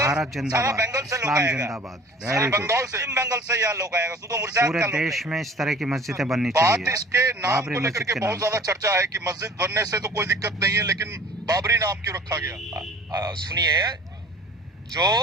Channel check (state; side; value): normal; both; correlation 0.47